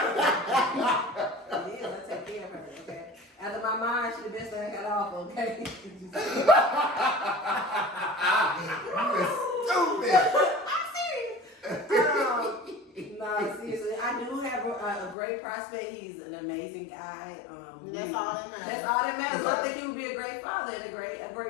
Yeah, I take care of her, okay? After my mind, she the best thing I got off, okay? You is stupid. No, seriously, I do have a great prospect. He's an amazing guy. That's all that matters. That's all that matters. I think he would be a great father and a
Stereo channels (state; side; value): drops out; right; at 15.2 s